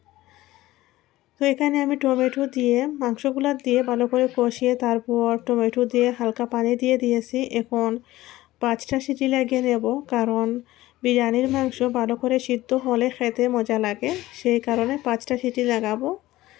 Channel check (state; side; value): quieter; right; 16.9 dB